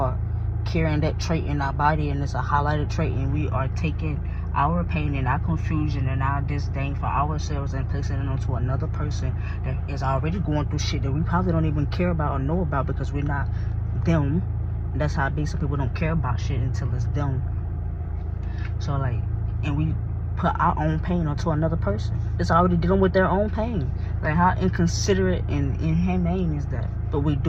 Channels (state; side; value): identical; both; correlation 1.00